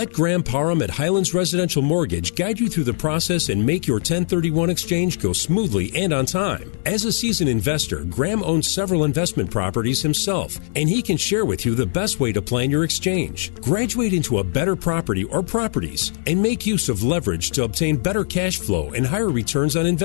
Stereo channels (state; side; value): silent; right; digital silence